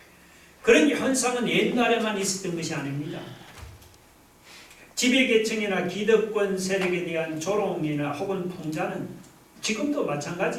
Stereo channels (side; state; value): both; identical; correlation 1.00